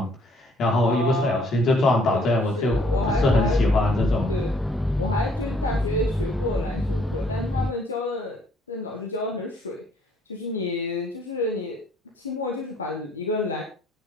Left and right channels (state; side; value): normal; both; correlation 0.63